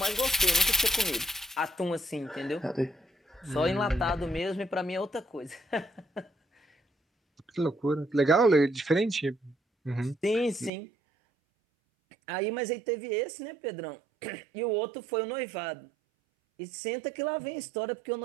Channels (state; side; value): drops out; left; at 10.7 s